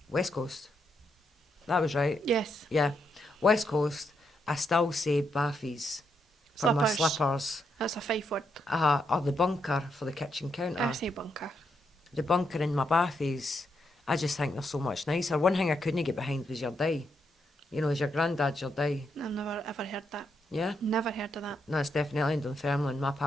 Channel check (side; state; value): both; normal; correlation 0.80